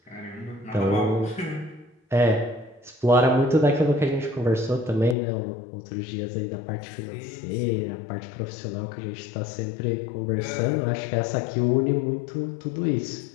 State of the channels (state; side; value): drops out; right; at 5.2 s